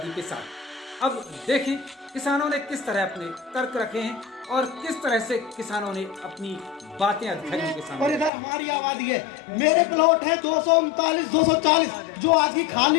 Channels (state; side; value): drops out; right; at 8.3 s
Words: के साथ। अब देखें किसानों ने किस तरह अपने तर्क रखे हैं और किस तरह से किसानों ने अपनी बातें अधिकारियों के सामने। और इधर हमारी आबादी है, मेरे प्लॉट है 239 240 जो आज की